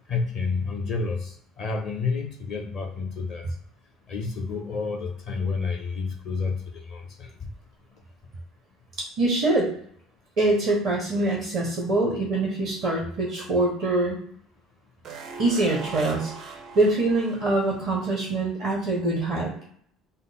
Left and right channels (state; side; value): normal; both; correlation 0.48